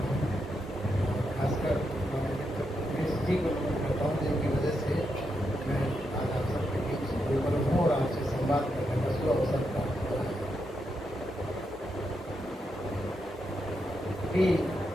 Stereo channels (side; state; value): both; normal; correlation 0.83